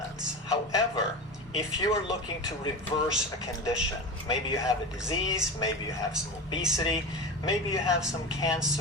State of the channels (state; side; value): normal; both; correlation 0.27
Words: However, if you are looking to reverse a condition, maybe you have a disease, maybe you have some obesity, maybe you have some